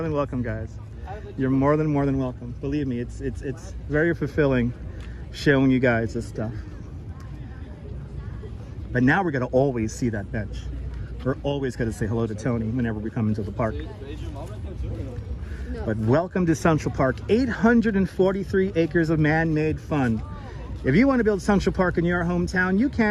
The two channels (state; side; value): identical; both; correlation 1.00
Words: than welcome, guys. You're more than welcome. Believe me, it's very fulfilling showing you guys this stuff. But now we're gonna always see that bench. We're always gonna say hello to Tony whenever we come into the park. But welcome to Central Park. 843 acres of man-made fun. If you want to build Central Park in your hometown, you